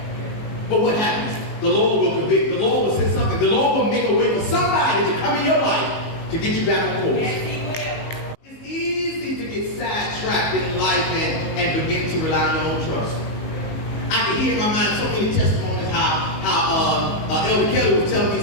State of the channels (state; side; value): late; right; 19 ms